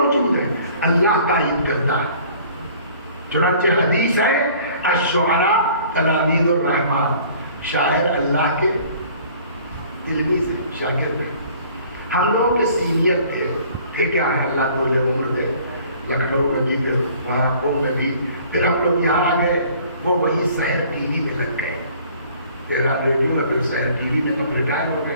ہیں، اللہ تائید کرتا ہے. چنانچہ حدیث ہے الشعراء تلامید الرحمن، شاعر اللہ کے علمی سے شاگرد ہیں. ہم لوگ کے سینئر تھے کیا ہے، اللہ کو لے عمر دے، لکھنؤ میں بھی، پھر وہاں پور میں بھی، پھر ہم لوگ یہاں آ گئے، وہ وہی سحر ٹی وی میں لگ گئے. تیرا ریڈیو میں، پھر سحر ٹی وی میں، تو ریٹائر ہو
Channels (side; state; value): both; inverted; correlation -0.52